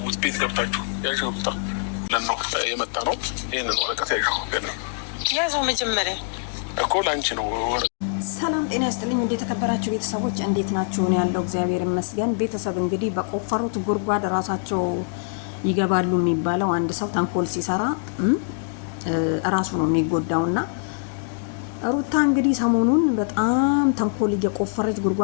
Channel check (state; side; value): silent; right; digital silence